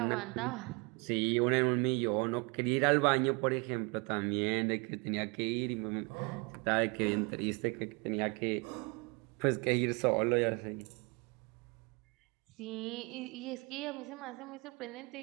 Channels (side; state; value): left; quieter; 30.2 dB